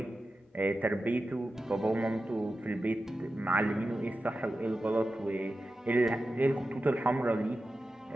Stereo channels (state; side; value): normal; both; correlation 0.92